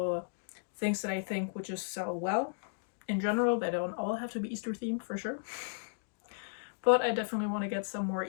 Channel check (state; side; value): silent; right; digital silence